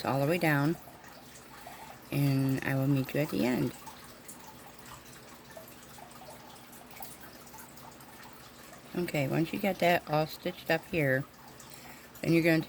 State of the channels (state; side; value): identical; both; correlation 1.00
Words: all the way down, and I will meet you at the end. Okay, once you get that all stitched up here, then you're going to